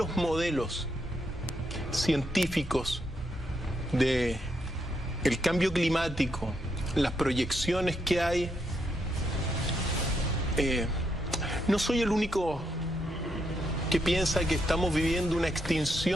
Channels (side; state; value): both; normal; correlation 0.79